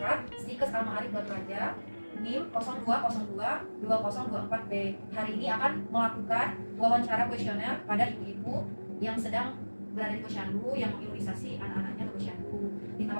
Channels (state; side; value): inverted; both; correlation -1.00